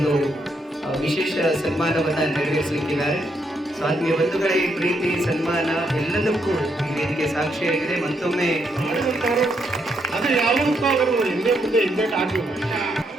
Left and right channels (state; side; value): normal; both; correlation 0.77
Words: ವಿಶೇಷ ಸನ್ಮಾನವನ್ನು ನೆರವೇರಿಸಲಿಕ್ಕಿದ್ದಾರೆ. ಸೊ ಆತ್ಮೀಯ ಬಂಧುಗಳೇ, ಈ ಪ್ರೀತಿ ಸನ್ಮಾನ ಎಲ್ಲದಕ್ಕೂ ಈ ವೇದಿಕೆ ಸಾಕ್ಷಿಯಾಗಿದೆ. ಮತ್ತೊಮ್ಮೆ ಅದು ಯಾವುದಕ್ಕೂ ಅವರು ಹಿಂದೆ ಮುಂದೆ ಹಿಂದೆ ಆಗಬೇಕು.